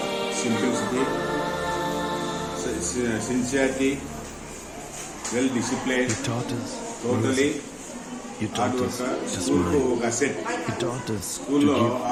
simplicity, sincerity, well discipline, You taught us totally music. You hard taught us worker. to స్కూల్కు smile. ఒక asset. You taught us to స్కూల్లో give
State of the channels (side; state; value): both; identical; correlation 1.00